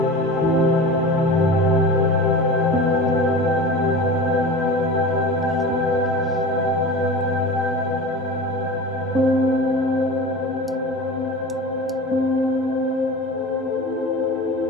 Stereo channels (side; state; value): both; normal; correlation 0.32